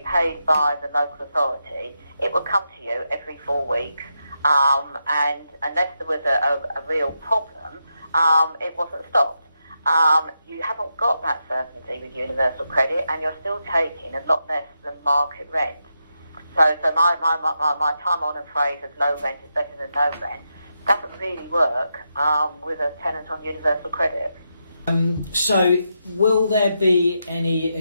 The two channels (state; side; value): inverted; both; correlation -0.85